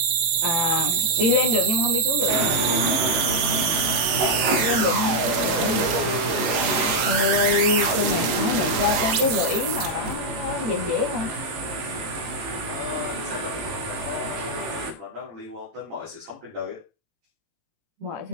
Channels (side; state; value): left; late; 19 ms